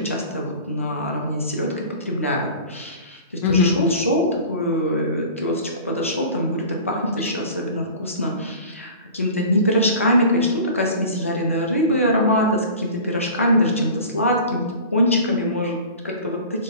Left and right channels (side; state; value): both; inverted; correlation -0.39